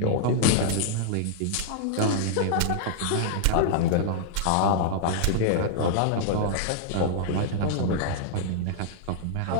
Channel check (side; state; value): both; different; correlation -0.01